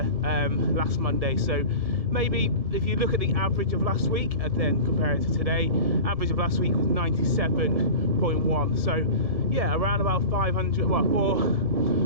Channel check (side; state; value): left; late; 1.5 ms